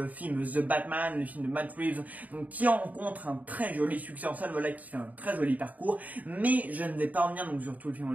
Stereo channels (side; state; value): left; late; 0.075 ms